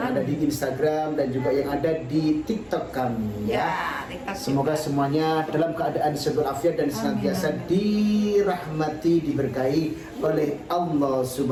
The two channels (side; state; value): both; identical; correlation 1.00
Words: ada di Instagram dan juga yang ada di TikTok kami ya. Semoga semuanya dalam keadaan sehat walafiat dan senantiasa dirahmati, diberkahi oleh Allah